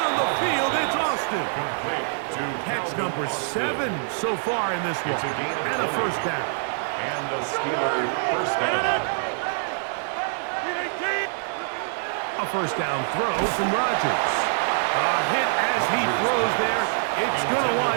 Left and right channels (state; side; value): silent; left; digital silence